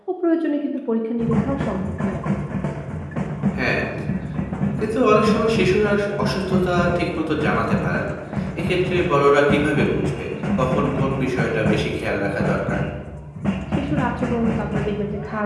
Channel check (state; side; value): identical; both; correlation 1.00